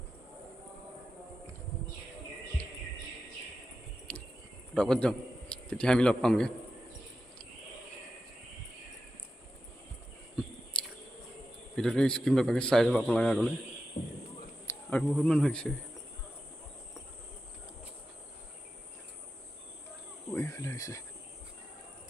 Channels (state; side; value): normal; both; correlation 0.90